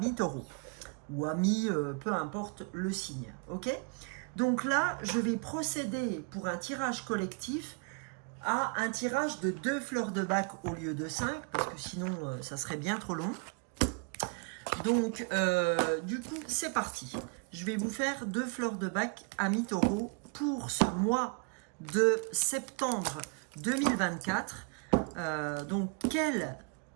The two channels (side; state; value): left; quieter; 36.1 dB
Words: taureau. Ou ami, peu importe le signe. Ok? Donc là, je vais procéder pour un tirage collectif à un tirage de 2 fleurs de bac au lieu de 5, parce que sinon ça serait bien trop long. Donc du coup c'est parti, je vais vous faire 2 fleurs de bac ami taureau pour ce mois de septembre 2024. Donc quelles